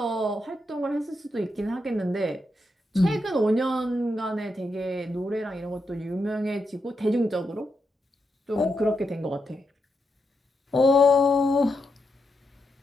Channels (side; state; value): both; normal; correlation 0.84